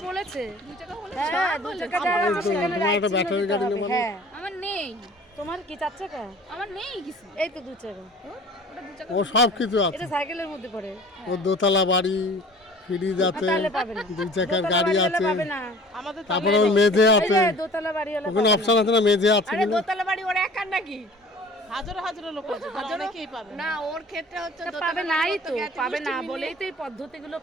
বলেছে। 2 টাকা হলে হ্যাঁ 2 টাকা দেওয়া আছে, সেখানে তোমার একটা ব্যাটারি গাড়ি নেবো না? হ্যাঁ আমার নেই, তোমার কি 4 টাকা? আমার নেই কিছু। এই তো 2 টাকা। ওটা 2 টাকা। ও সব কিছু আছে। এটা সাইকেলের মধ্যে পড়ে। ওর দোতলা বাড়ি, ফ্রিজ আছে, তাহলে পাবে না। 2 চাকার দোতলা গাড়ি বাড়িওয়ালা আছে, পাবে না। আমাদের তারপরে ওর মেঝে আছে। এই যে দোতলা বাড়িওয়ালা ওখানে পাবে অপশন আছে না মেঝে আছে আরে কিনা? দোতলা বাড়ি ওর একার নাকি? হাজারো হাজারো লোক আছে, অনেকেই পাবে না ওর ক্ষেত্রে হচ্ছে না। দোতলা পাবে বাড়ি নাই করতে তো, গেছে পাবে না গোষ্ঠী বলেই তো এই পদ্ধতিগুলো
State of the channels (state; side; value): normal; both; correlation 0.47